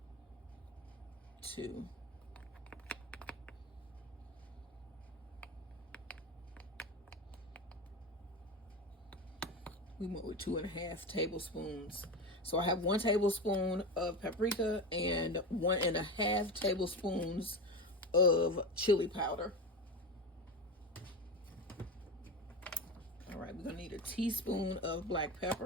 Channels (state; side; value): normal; both; correlation 0.22